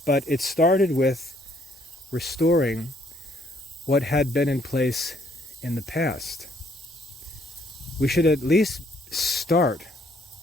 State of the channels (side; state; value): both; normal; correlation 0.66